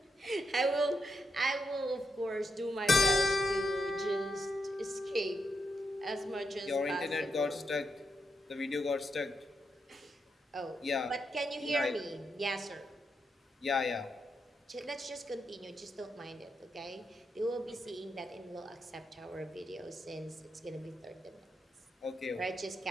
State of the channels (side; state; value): both; normal; correlation 0.82